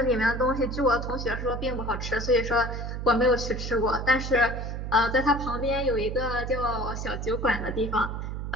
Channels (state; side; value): noise; right; hum, 5 dB below the sound